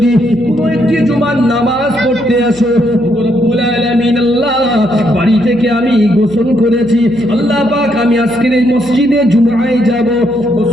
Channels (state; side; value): noise; right; hum, 21 dB below the sound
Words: কোনো একটি জুমার নামাজ পড়তে আসো, রব্বুল আলামিন আল্লাহ, বাড়ি থেকে আমি গোসল করেছি, আল্লাহ পাক আমি আজকের এই মসজিদে জুমায় যাব।